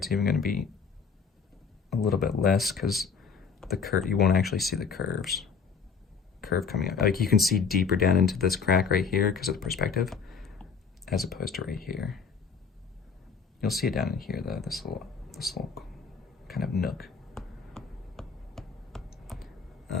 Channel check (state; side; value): quieter; right; 5.7 dB